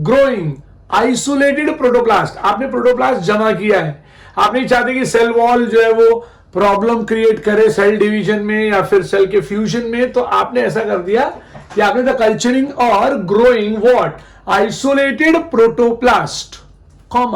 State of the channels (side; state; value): both; identical; correlation 1.00